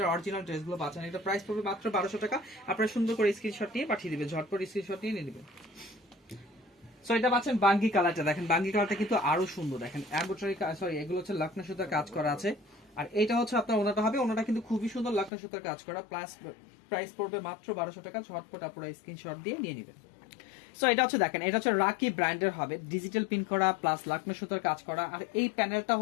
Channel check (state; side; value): drops out; right; at 15.3 s